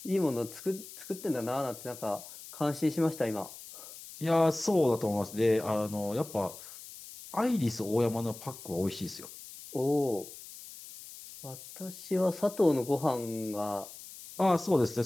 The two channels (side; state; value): left; noise; hiss, 15 dB below the sound